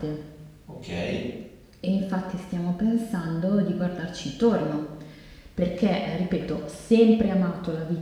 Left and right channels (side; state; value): both; identical; correlation 1.00